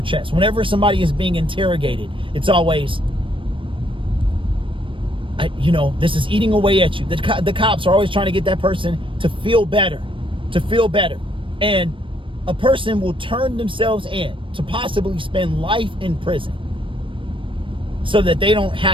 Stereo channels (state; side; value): late; left; 0.25 ms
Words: chest. Whenever somebody is being interrogated, it's always, this is eating away at you. The cops are always trying to get that person to feel better, And a person will turn themselves in to possibly spend life in prison so that they don't